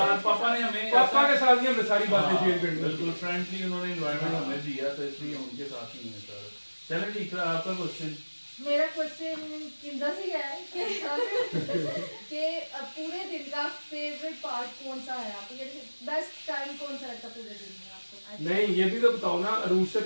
पापा ने हमने सारी बातें शेयर करनी, बिल्कुल फ्रेंडली उन्होंने एनवायरनमेंट हमें दिया, तो इसलिए उनके साथ ही है सर। चलो ठीक है, आपका क्वेश्चन। मेरा क्वेश्चन किंदा से है कि पूरे दिन का फेवरेट पार्ट कौन सा है आपको, बेस्ट टाइम कौन सा रहता पूरे दिन में आपको? नहीं, ये भी तो बताओ ना, रूस से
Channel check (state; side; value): inverted; both; correlation -1.00